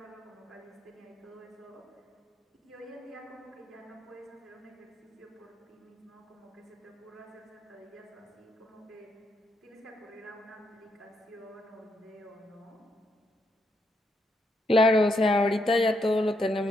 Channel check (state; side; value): normal; both; correlation 0.78